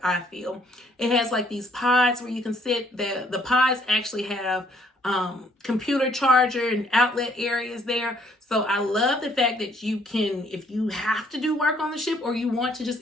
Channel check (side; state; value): both; normal; correlation 0.65